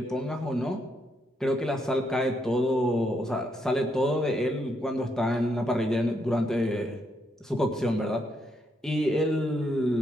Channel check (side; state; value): both; normal; correlation 0.77